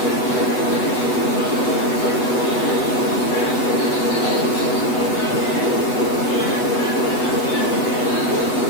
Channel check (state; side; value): late; right; 8.1 ms